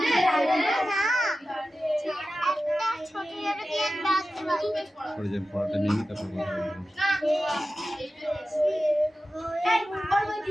পড়াটা নিয়ে তারপর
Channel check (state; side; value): normal; both; correlation 0.94